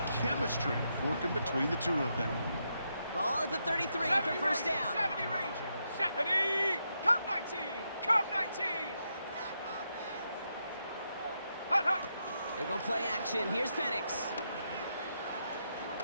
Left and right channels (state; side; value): inverted; both; correlation -0.82